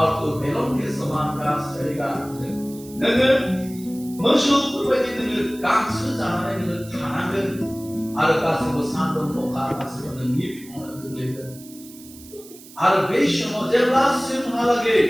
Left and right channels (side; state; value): right; noise; hiss, 20 dB below the sound